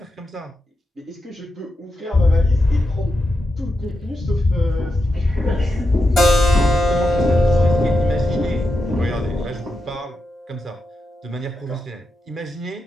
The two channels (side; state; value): both; normal; correlation 0.87